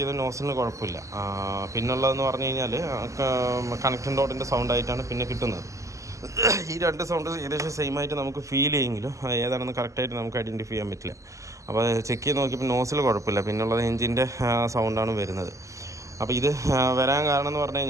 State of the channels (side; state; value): left; late; 0.16 ms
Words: നോസിലിന് കുഴപ്പമില്ല. പിന്നുള്ളതെന്ന് പറഞ്ഞു കഴിഞ്ഞാൽ കണക്ഷൻ ഡോട്ടിൻ്റെ സൗണ്ടായിട്ടാണ് പിന്നെ കിട്ടുന്നത്. ഈ രണ്ട് സൗണ്ട് ഏകദേശം സെയിം ആയിട്ട് നമുക്ക് ഫീൽ ചെയ്യുമെങ്കിലും ഏതാണെന്ന് കറക്റ്റായിട്ട് നമുക്ക് ഐഡൻറ്റിഫൈ ചെയ്യാൻ പറ്റില്ല. അപ്പോൾ ചെക്ക് ചെയ്ത് നോക്കിയപ്പോൾ നോസിൽ കുഴപ്പമില്ല, പിന്നുള്ളത് എഞ്ചിൻ്റെ സൗണ്ടാണ് വരുന്നത്. അപ്പോൾ ഇത് വരാൻ കാരണം എന്ന് പറഞ്ഞു